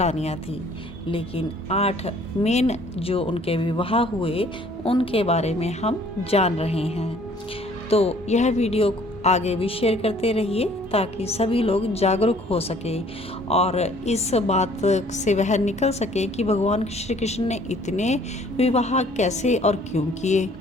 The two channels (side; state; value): both; normal; correlation 0.57